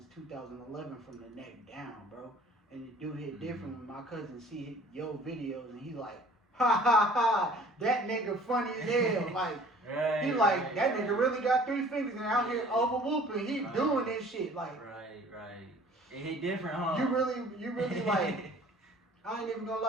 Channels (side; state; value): both; normal; correlation 0.51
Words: 2011 from the neck down, bro. And the dude hit different when my cousin see your videos and he like, ha ha ha, that nigga funny as hell. Like, Right, he like, right, that right. nigga really got 3 fingers and out here over whooping. He Right. doing this shit. Like, Right, right. It hit different, huh? you really like, I ain't even gonna